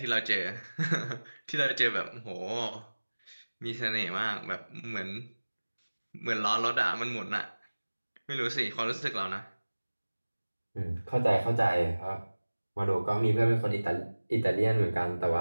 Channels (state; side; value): inverted; both; correlation -1.00